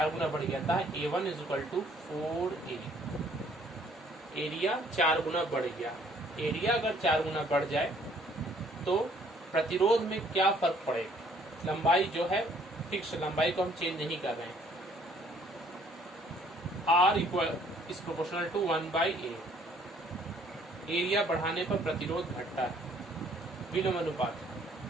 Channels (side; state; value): both; normal; correlation 0.61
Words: गुना बढ़ गया था, A1 is equal to 4A, area 4 गुना बढ़ गया। एरिया अगर 4 गुना बढ़ जाए तो प्रतिरोध में क्या फर्क पड़ेगा, लंबाई जो है फिक्स, लंबाई को हम चेंज नहीं कर रहे हैं। R equal is proportional to 1/A, area बढ़ाने पर प्रतिरोध घटता है, विलोम अनुपात।